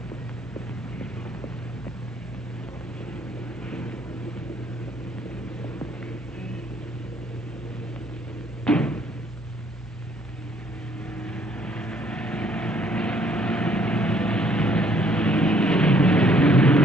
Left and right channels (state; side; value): normal; both; correlation 0.64